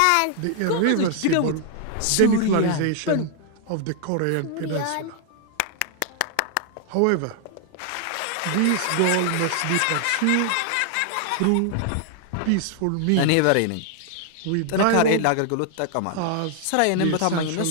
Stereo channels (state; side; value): different; both; correlation 0.00